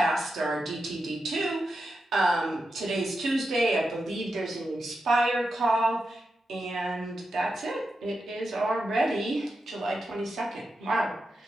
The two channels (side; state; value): both; normal; correlation 0.88